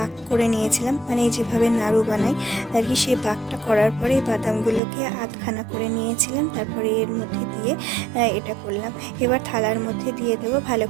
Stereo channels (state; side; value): drops out; left; at 4.8 s